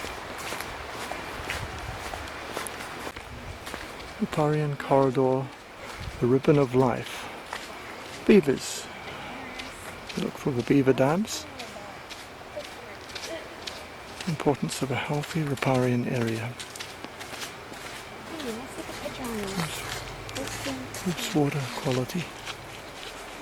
Riparian corridor, the ribbon of life. Beavers. Look for the beaver dams. Importance of a healthy riparian area. Oops, water quality.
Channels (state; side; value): identical; both; correlation 1.00